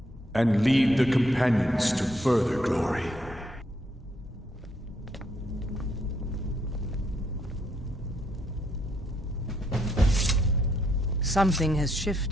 And lead the Companions to further glory. Something has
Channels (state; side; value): normal; both; correlation 0.73